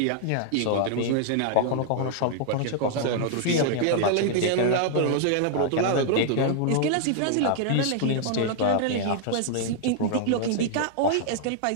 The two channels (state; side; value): different; both; correlation -0.01